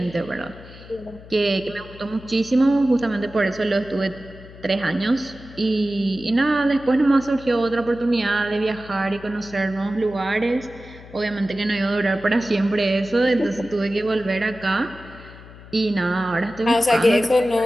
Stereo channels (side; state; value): left; noise; hum, 18 dB below the sound